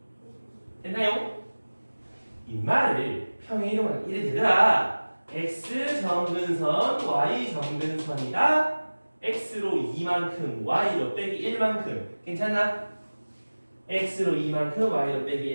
됐나요? 이 말을 평행이동하면 이래 되더라. x 정근선 y 정근선이다. x로 2만큼 y로 빼기 1만큼 괜찮나? x로 2만큼 y로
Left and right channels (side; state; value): both; inverted; correlation -1.00